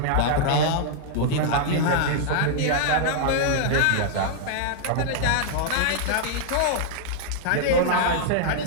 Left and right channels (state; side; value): different; both; correlation -0.01